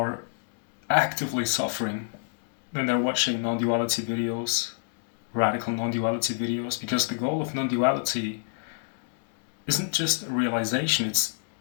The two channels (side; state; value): right; silent; digital silence